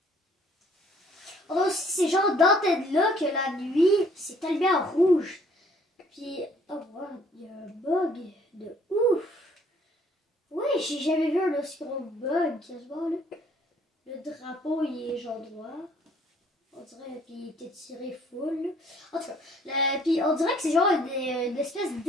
On a aussi ces genres d'antennes-là que la nuit, c'est allumé en rouge. Puis, oh wow, il y a un bug de ouf. Oui, j'ai jamais vu un aussi gros bug quasiment là. Le drapeau, il est genre droit. On dirait, puis il était tiré full. Là. En tout cas, puis on dirait que c'est genre une espèce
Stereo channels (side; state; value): both; normal; correlation 0.60